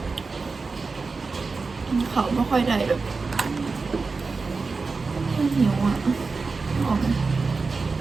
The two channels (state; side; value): quieter; left; 4.2 dB